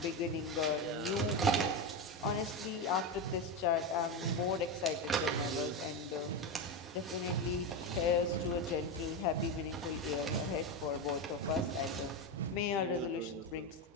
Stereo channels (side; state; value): both; normal; correlation 0.14